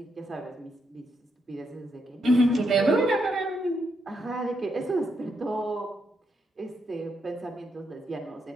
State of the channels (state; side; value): normal; both; correlation 0.79